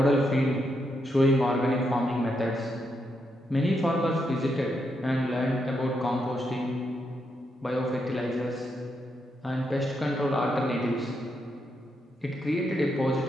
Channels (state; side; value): normal; both; correlation 0.81